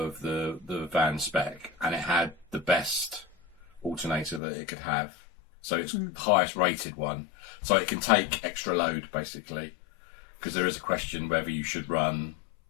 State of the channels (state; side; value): drops out; right; at 4.4 s